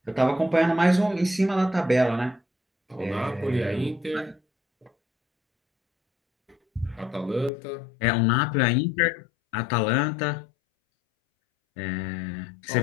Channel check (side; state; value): right; drops out; at 7.5 s